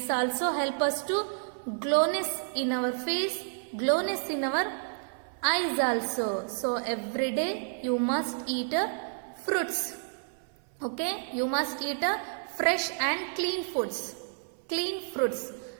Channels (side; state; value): left; silent; 58 dB below the other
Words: also help us to glowiness in our face, glowiness in our eyes also. So every day you must eat fruits. Okay, you must eat fresh and clean foods. Clean fruits,